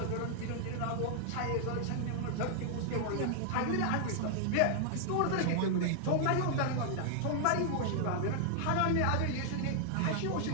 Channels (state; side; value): different; both; correlation -0.01